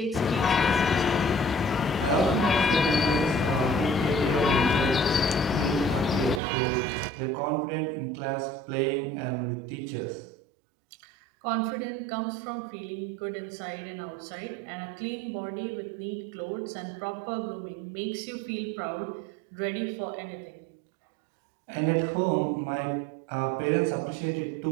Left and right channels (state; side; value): drops out; left; at 6.4 s